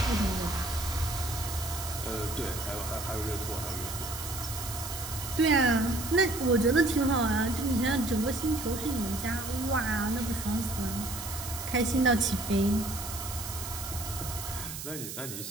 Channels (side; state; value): right; noise; hiss, 8 dB below the sound